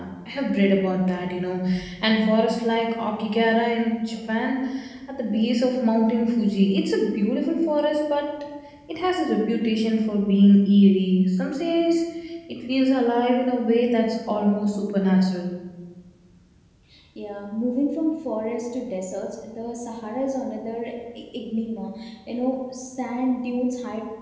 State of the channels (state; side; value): identical; both; correlation 1.00